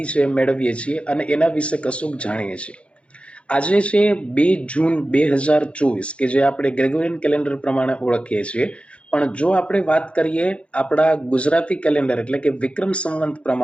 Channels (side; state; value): right; late; 0.061 ms